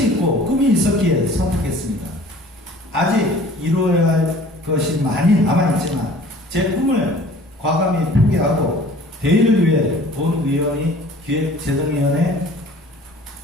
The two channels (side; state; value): both; normal; correlation 0.49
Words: 있고 꿈이 있었기에 선택했습니다. 아직 이루어야 할 것이 많이 남아있지만 제 꿈을 과감히 포기하고 대의를 위해 본 의원이 기획재정위원회